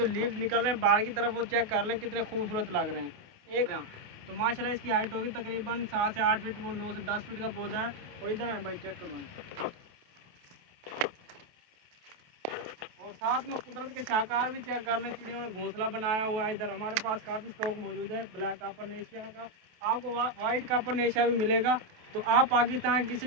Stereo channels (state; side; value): late; left; 28 ms